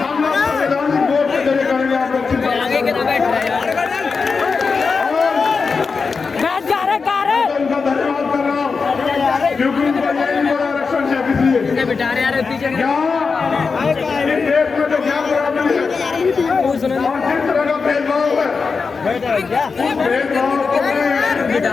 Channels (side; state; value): right; quieter; 4.9 dB